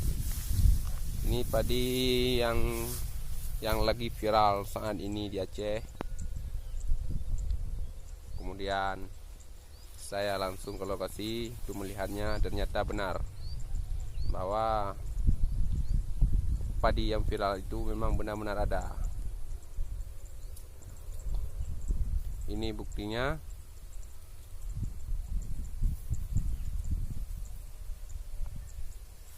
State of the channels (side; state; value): both; identical; correlation 1.00